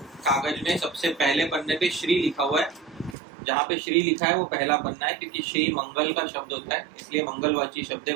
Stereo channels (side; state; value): left; drops out; at 3.2 s